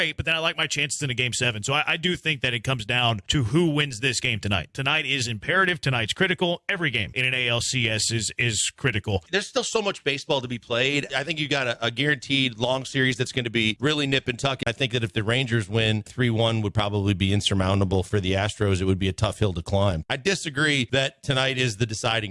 but then I like my chances in a Game 7. So I do think that it comes down to who wins this game tonight. Tonight is imperative. Tonight's critical. Every game in an ALCS is critical. There's still so much baseball to be played. I think you got a guaranteed long series that's going to be really nip and tuck. I think that if the Rangers win, 3-1 would probably be insurmountable for the Astros. It would be a tough hill to climb. I disagree that tonight is the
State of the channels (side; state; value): both; identical; correlation 1.00